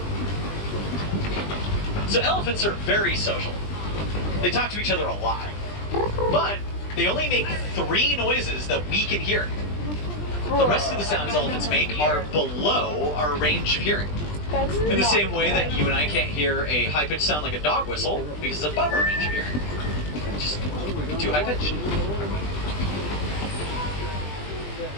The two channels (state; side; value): late; right; 20 ms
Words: So elephants are very social. They talk to each other a lot. But they only make 3 noises that we can hear. The rest of the sounds elephants make are below our range of hearing. That's In the not same way that fun. you and I can't hear a high-pitched sound like a dog whistle because it's above our range of hearing. Just too high-pitched.